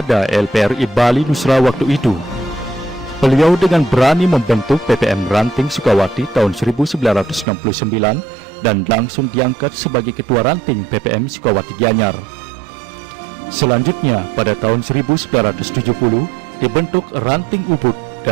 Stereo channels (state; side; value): drops out; left; at 7.5 s